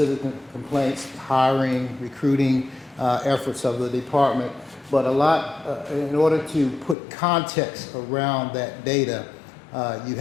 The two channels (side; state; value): right; drops out; at 7.0 s